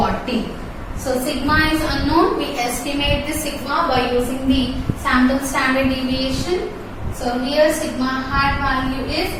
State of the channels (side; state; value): both; identical; correlation 1.00